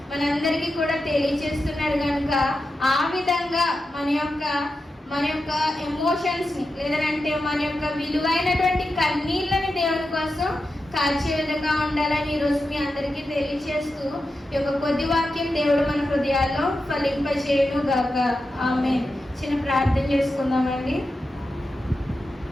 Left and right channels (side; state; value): both; normal; correlation 0.90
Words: మనందరికీ కూడా తెలియజేస్తున్నాడు. కనుక ఆ విధంగా మన యొక్క ఎమోషన్స్ ని, లేదంటే మన యొక్క విలువైనటువంటి కన్నీళ్ళని దేవుని కోసం కాల్చే విధంగా ఉండాలని ఈరోజు మీ అందరికీ తెలియజేస్తూ ఈ యొక్క కొద్ది వాక్యం దేవుడు మన హృదయాల్లో ఫలింపజేయును గాక. ఆమేన్. చిన్న ప్రార్థన చేసుకుందామండి.